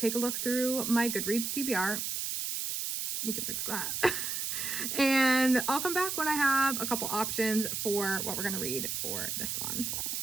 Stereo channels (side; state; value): right; noise; hiss, 2 dB below the sound